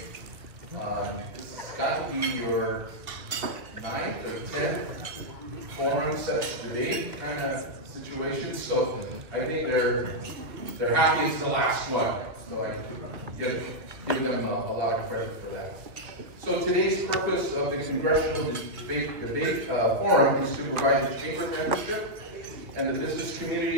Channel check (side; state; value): left; late; 2.1 ms